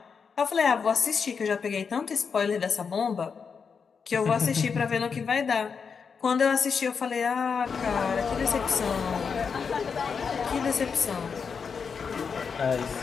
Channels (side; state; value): right; quieter; 5.9 dB